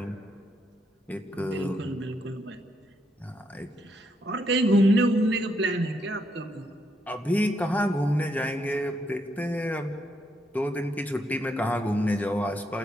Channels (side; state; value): both; normal; correlation 0.77